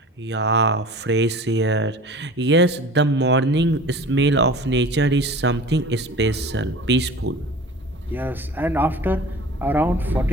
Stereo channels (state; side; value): normal; both; correlation 0.40